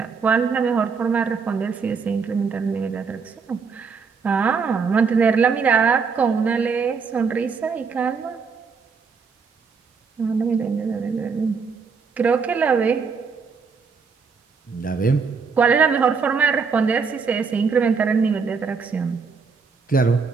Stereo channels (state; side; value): quieter; left; 5.4 dB